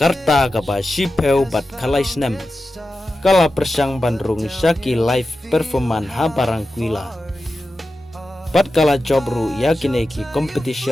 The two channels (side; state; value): both; normal; correlation 0.92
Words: ka ba shipeu bat kalai snem kala persang bandrung Shaki live performan ha barang kuila pat kala jobru yakineki